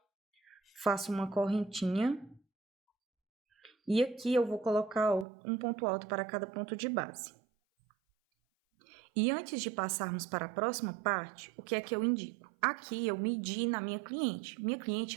Faço uma correntinha. E aqui eu vou colocar um ponto alto para cada ponto de base. E antes de passarmos para a próxima parte, o que é que eu indico? Aqui eu medi na minha cliente. Minha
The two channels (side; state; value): left; drops out; at 5.2 s